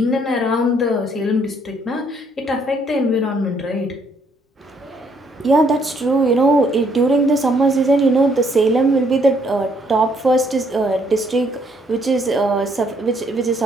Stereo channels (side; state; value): both; normal; correlation 0.68